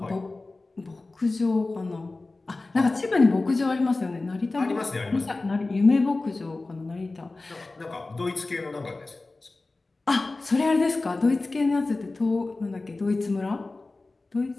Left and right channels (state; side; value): quieter; right; 3.3 dB